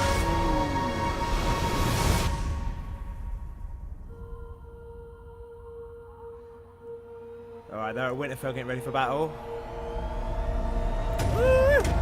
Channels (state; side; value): identical; both; correlation 1.00